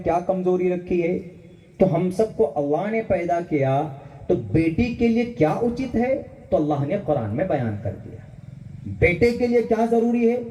کمزوری رکھی ہے. تو ہم سب کو اللہ نے پیدا کیا تو بیٹی کے لیے کیا اچت ہے تو اللہ نے قرآن میں بیان کر دیا. بیٹے کے لیے کیا ضروری ہے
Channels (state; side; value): identical; both; correlation 1.00